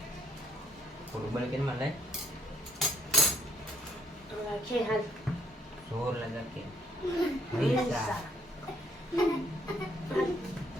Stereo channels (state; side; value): normal; both; correlation 0.66